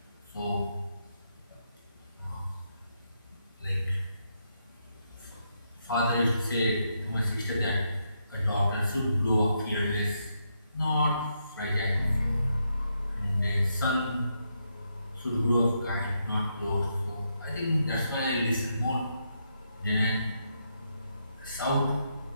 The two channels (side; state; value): both; inverted; correlation -0.80